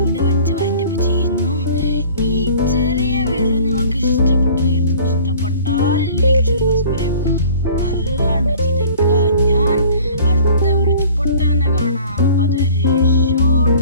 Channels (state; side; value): inverted; both; correlation -0.49